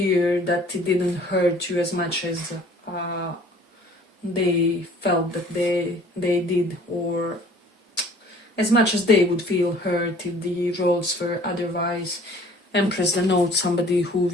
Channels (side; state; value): both; normal; correlation 0.52